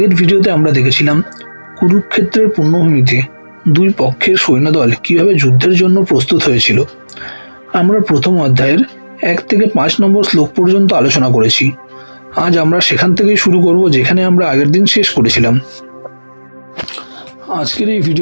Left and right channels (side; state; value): both; inverted; correlation -1.00